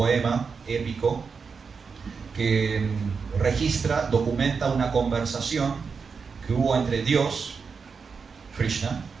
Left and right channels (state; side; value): quieter; left; 5.4 dB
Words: épico que registra, documenta una conversación que hubo entre Dios, Krishna,